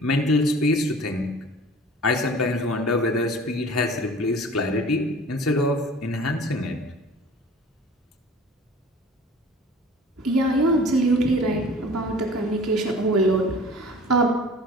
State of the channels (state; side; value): normal; both; correlation 0.44